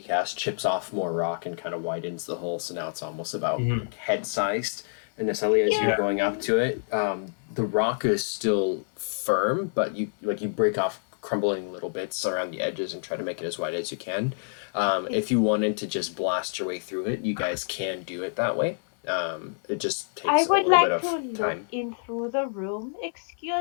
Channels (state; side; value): silent; right; digital silence